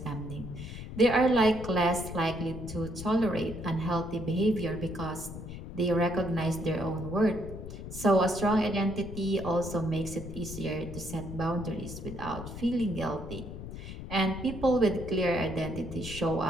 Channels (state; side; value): noise; left; rumble, 10 dB below the sound